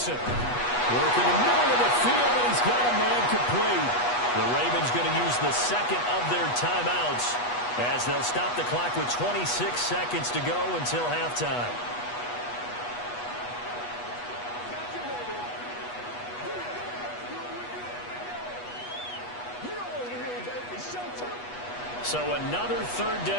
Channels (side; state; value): right; late; 8.2 ms